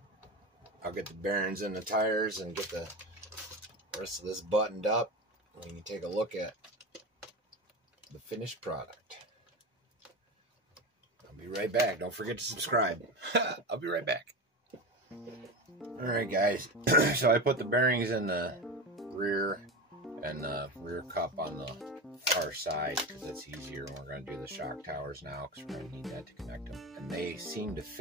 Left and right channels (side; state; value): both; normal; correlation 0.22